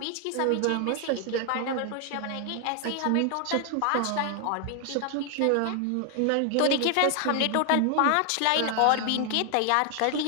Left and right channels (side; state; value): both; different; correlation 0.00